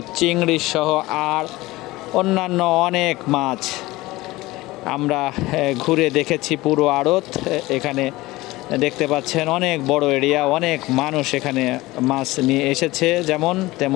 চিংড়ি সহ আর অন্যান্য অনেক মাছ। আমরা ঘুরে দেখেছি পুরো আড়ত। এখানে দেখতে পাচ্ছেন অনেক বড় এরিয়া, অনেক মানুষ এখানে মাছ নিয়ে এসেছে, যেমন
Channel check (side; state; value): right; quieter; 19.5 dB